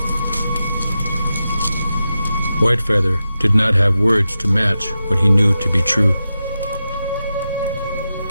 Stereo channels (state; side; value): inverted; both; correlation -0.91